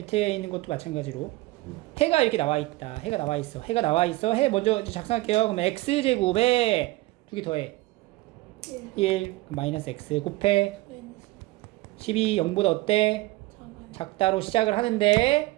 있는 것도 마찬가지로 해가 이렇게 나와 있다. 해가 나와 있어. 해 먼저 이제 작성할게요. 그럼 x제곱에 두 개 더해 1 마이너스 x 곱해 12 0보다 어때? 작다로 시작을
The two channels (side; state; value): left; quieter; 19.7 dB